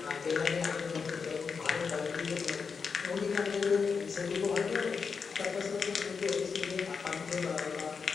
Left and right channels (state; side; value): quieter; right; 5.5 dB